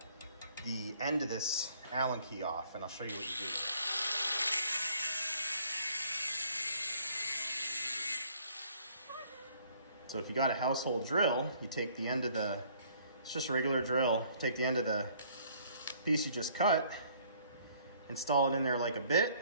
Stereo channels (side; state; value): both; inverted; correlation -0.60